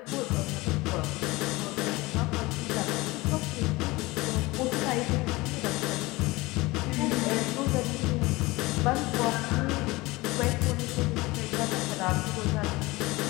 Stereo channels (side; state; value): right; quieter; 21.6 dB